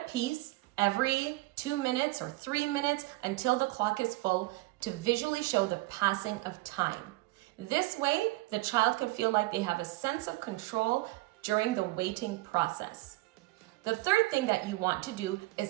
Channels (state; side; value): quieter; left; 20.7 dB